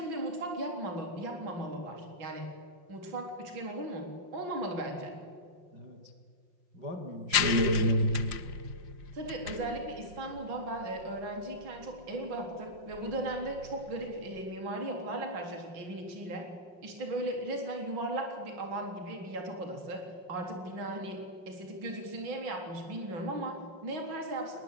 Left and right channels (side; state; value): left; late; 5.6 ms